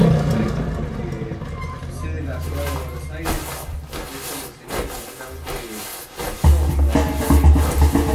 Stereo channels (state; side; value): identical; both; correlation 1.00